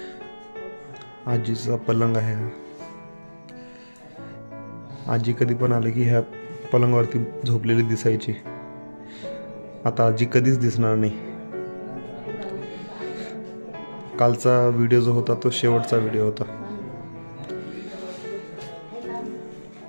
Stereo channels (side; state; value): both; inverted; correlation -1.00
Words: आजीचा पलंग आहे. आजी कधी पण आले की ह्या पलंगावरती झोपलेली दिसायची. आता आजी कधीच दिसणार नाही. कालचा व्हिडिओ जो होता तो शेवटचा व्हिडिओ होता.